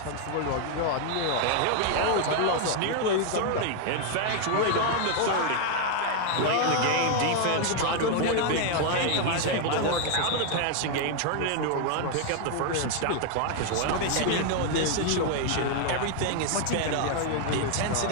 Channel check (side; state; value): both; different; correlation 0.00